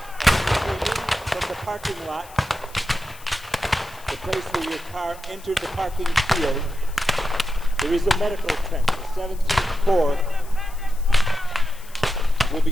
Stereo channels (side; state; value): left; noise; hiss, 21 dB below the sound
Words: from the parking lot, the place where your car entered the parking field, there is a medical tent. The 17th Corps will be